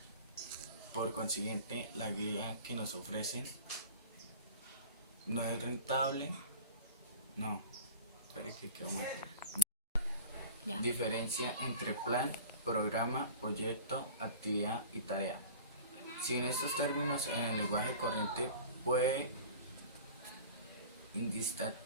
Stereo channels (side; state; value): both; inverted; correlation -0.39